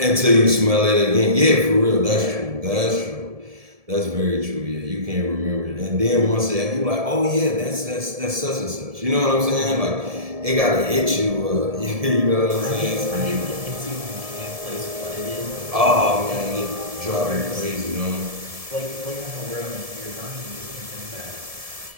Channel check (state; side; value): late; left; 1.7 ms